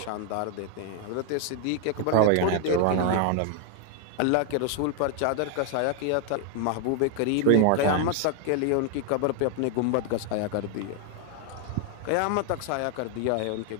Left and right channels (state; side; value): different; both; correlation 0.00